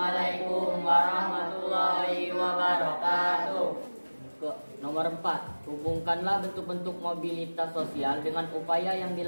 warahmatullahi wabarakatuh. Nomor 4, hubungkanlah bentuk-bentuk mobilitas sosial dengan upaya yang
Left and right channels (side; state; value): both; inverted; correlation -1.00